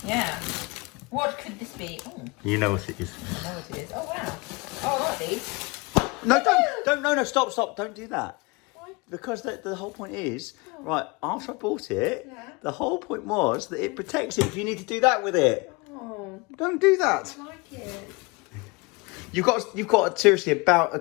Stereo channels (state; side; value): quieter; right; 26.5 dB